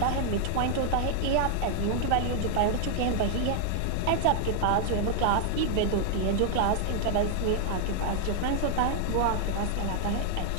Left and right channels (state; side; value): different; both; correlation 0.00